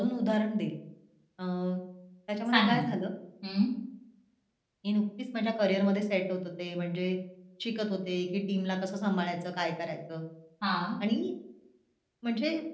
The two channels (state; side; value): identical; both; correlation 1.00